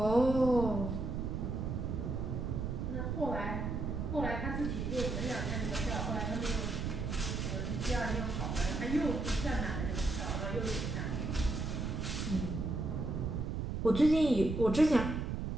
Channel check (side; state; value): right; noise; rumble, 2 dB below the sound